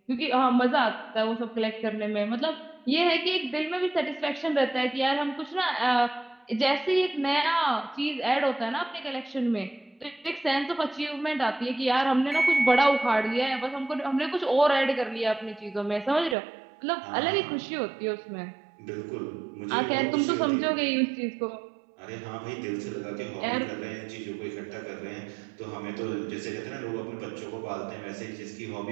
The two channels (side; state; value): left; drops out; at 16.4 s